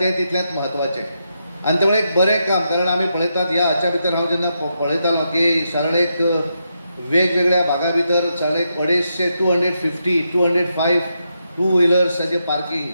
तितलेंच म्हत्वाचें. आनी त्यामुळे एक बरें काम, कारण आमी पळयतात ह्या हाच्या भितर हांव जेन्ना पळयतालो की सरळ एक वेगवेगळ्या भागा भितर सरळ एक 205 टू व्हिलर्साचें पार्किंग,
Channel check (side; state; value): both; inverted; correlation -0.83